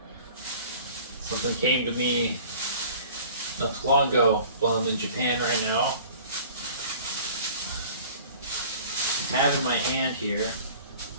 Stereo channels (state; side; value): inverted; both; correlation -0.46